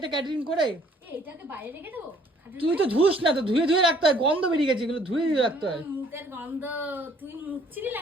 ক্যাটারিং করে? এটাকে বাইরে রেখে দেবো? তুই তো ধুস না, তো ধুয়ে ধুয়ে রাখতে হয়, গন্ধ বেরিয়ে গেছে, এগুলো ধুয়ে ধুয়ে রাখতে হয়। মুখের গন্ধ, তুই মুছছিলি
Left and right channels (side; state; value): both; normal; correlation 0.60